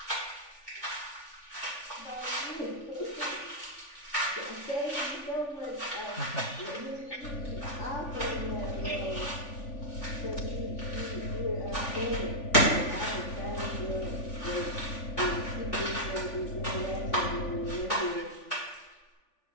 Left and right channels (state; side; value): late; right; 3.4 ms